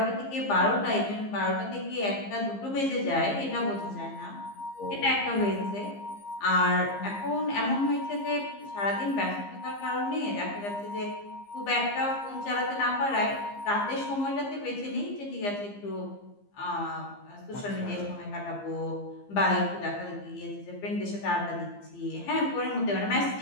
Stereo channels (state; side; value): late; right; 15 ms